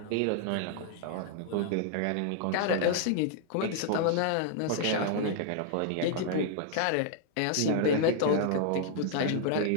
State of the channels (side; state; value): both; different; correlation -0.01